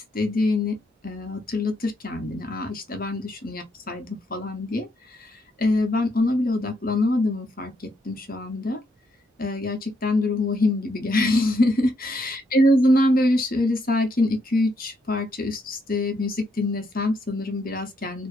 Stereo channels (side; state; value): both; normal; correlation 0.76